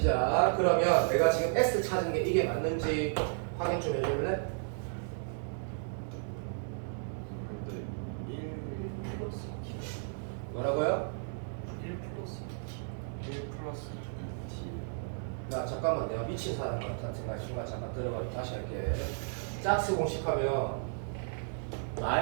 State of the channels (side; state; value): left; silent; digital silence